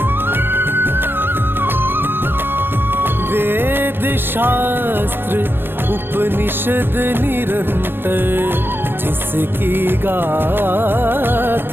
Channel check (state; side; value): late; left; 0.10 ms